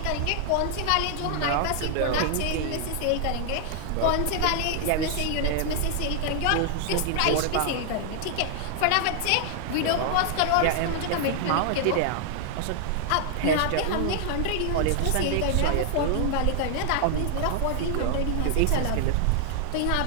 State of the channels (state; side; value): different; both; correlation 0.00